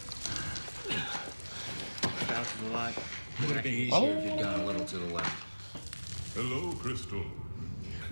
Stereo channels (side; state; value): both; inverted; correlation -1.00